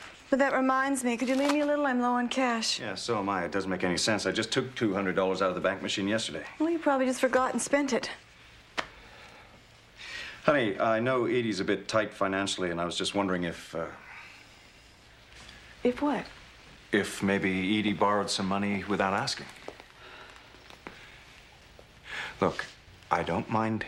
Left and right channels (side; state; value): both; identical; correlation 1.00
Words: but that reminds me. Could you leave me a little? I'm low on cash. Yeah, so am I. It doesn't make any sense. I just took $200 out of the bank machine yesterday. Well, you probably just forgot and spent it. Honey, I know Edie's a bit tight financially, and I was just wondering if, If what? if maybe Edie borrowed some money without asking. Look, I don't mind